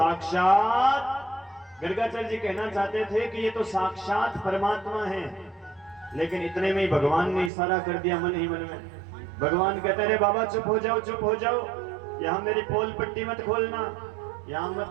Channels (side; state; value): left; drops out; at 7.5 s